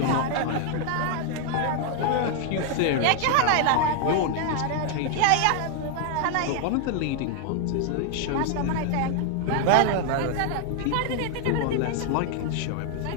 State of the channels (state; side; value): different; both; correlation 0.00